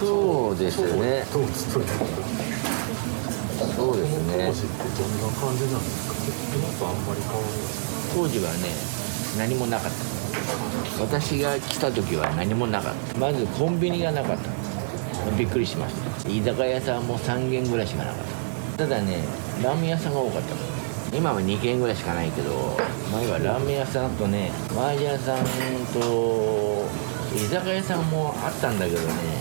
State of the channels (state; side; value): silent; left; digital silence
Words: うですね。そうですね。当時はね、何もなかった。私が来た時は何もなかった。まずコンビニがなかった。びっくりしました。居酒屋さんも3軒ぐらいしかなかった。ただね、ラーメン屋さんが多かった。今は2軒ぐらいしかないけど、前はラーメン屋さんとね、麻雀屋さんと居酒屋さんもあったんだけどね、